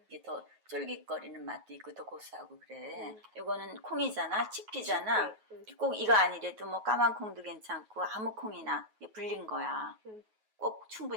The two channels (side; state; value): left; late; 9.3 ms